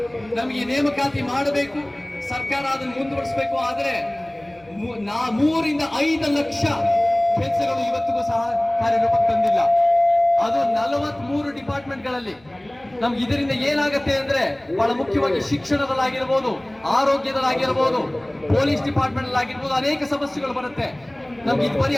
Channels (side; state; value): left; noise; hum, 30 dB below the sound